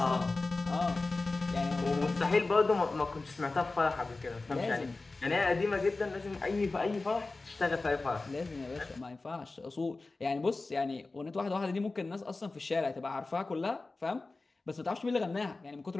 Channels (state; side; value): quieter; right; 3.5 dB